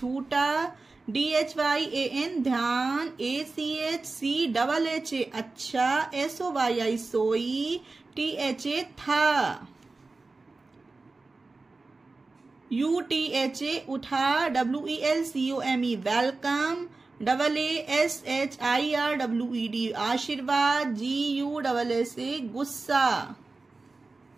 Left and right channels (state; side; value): quieter; left; 3.6 dB